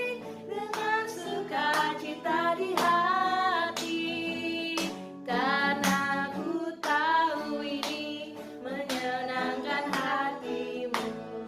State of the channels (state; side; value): identical; both; correlation 1.00